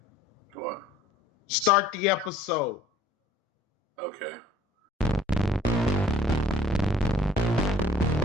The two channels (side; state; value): both; normal; correlation 0.55